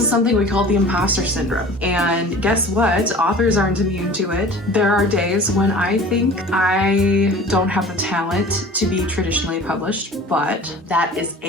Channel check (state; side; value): normal; both; correlation 0.43